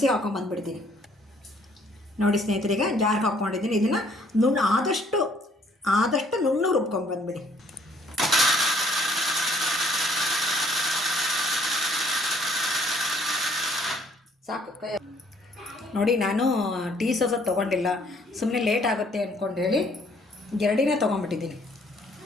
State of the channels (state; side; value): normal; both; correlation 0.62